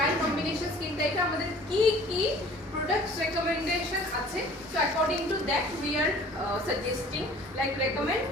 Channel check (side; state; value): both; normal; correlation 0.49